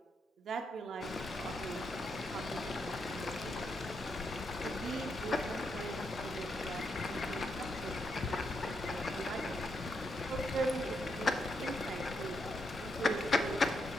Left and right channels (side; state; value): both; normal; correlation 0.80